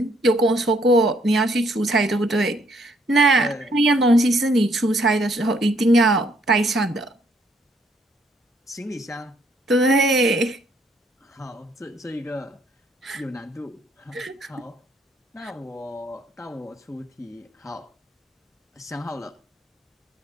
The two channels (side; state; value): both; normal; correlation 0.68